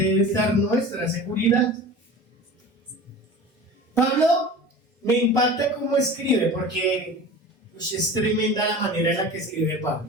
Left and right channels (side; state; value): both; normal; correlation 0.36